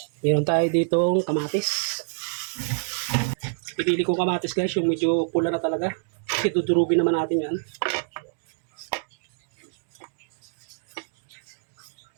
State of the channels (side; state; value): left; silent; digital silence